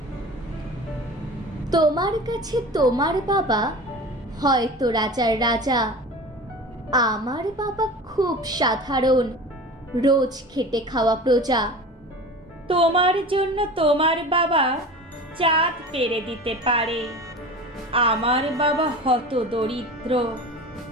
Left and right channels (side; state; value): both; normal; correlation 0.35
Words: তোমার কাছে তোমার বাবা হয়তো রাজার রাজা, আমার বাবা খুব সাধারণ, রোজ খেটে খাওয়া প্রজা। তোমার জন্য তোমার বাবা চাঁদ পেরে দিতে পারে, আমার বাবা হত দরিদ্র,